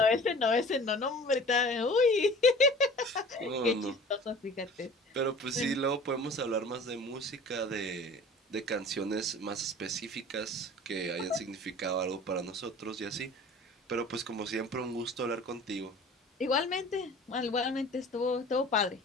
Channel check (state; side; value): normal; both; correlation 0.44